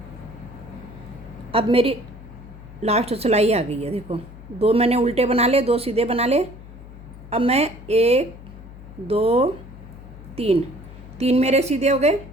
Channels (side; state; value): left; noise; hum, 17 dB below the sound